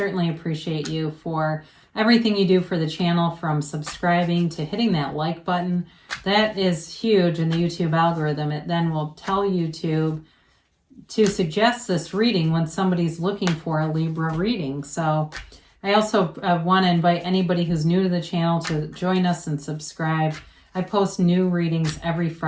appreciate you for everything you do for the channel, from subscribing to hitting that like button. That is huge in the YouTube algorithm. It then will tell YouTube to suggest this reading when somebody's looking for a Libra reading. So I also want to invite anybody who's new to the channel to join us and subscribe. I post new readings every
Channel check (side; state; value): both; identical; correlation 1.00